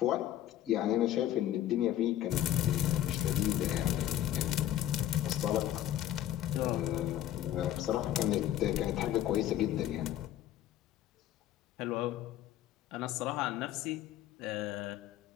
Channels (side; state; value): right; quieter; 12.5 dB